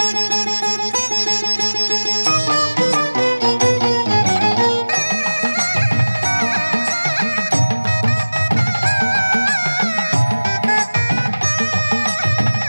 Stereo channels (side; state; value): both; inverted; correlation -1.00